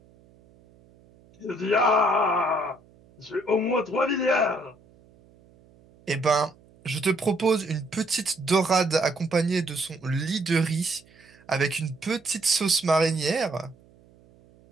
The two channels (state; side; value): noise; right; hum, 28 dB below the sound